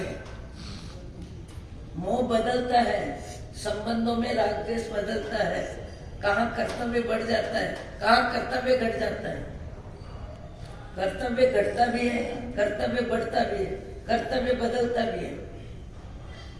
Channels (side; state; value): both; identical; correlation 1.00